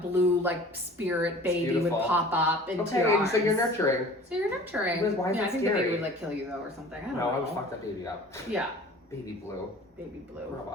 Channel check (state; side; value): normal; both; correlation 0.45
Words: like spirit baby would beautiful. pop up into Okay, your and arms. so you're nurturing. So you're nurturing. Why is yeah, that I think the scary? baby would like kill you though or something. I don't No, know. I would fuck that baby up. Yeah. Baby blue. Baby blue. Grow